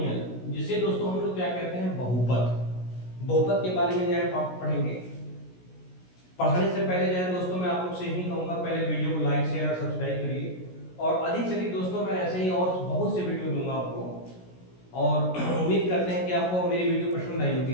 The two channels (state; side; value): late; right; 16 ms